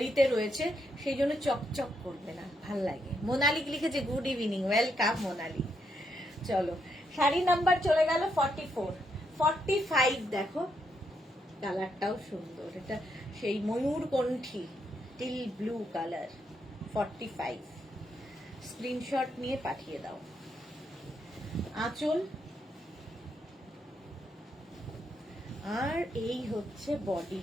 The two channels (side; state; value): both; normal; correlation 0.78